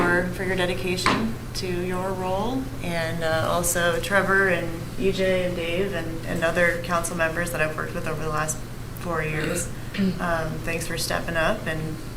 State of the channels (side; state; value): both; identical; correlation 1.00